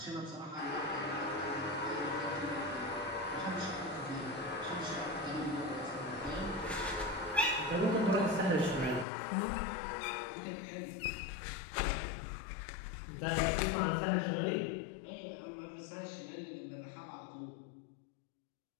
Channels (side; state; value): right; drops out; at 9.1 s